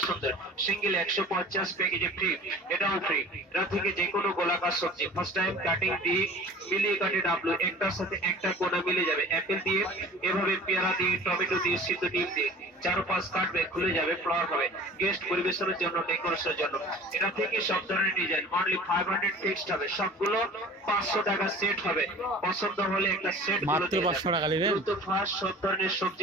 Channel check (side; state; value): both; normal; correlation 0.44